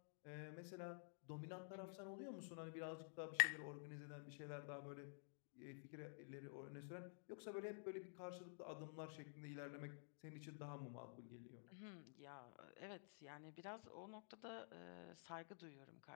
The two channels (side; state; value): right; silent; digital silence